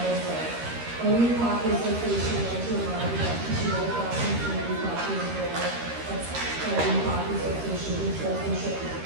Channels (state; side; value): late; left; 13 ms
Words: way. Only Hockey Association wants to remind you that PTO classes and new hockey is rare. That's new Hockey Association, which sportsmanship is